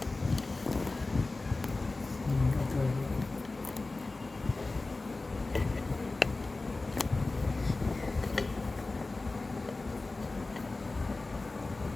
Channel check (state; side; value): quieter; right; 3.3 dB